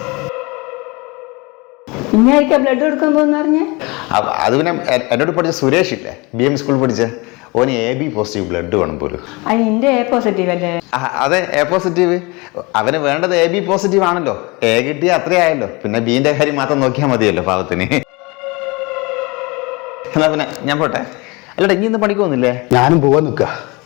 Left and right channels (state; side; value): quieter; right; 26.0 dB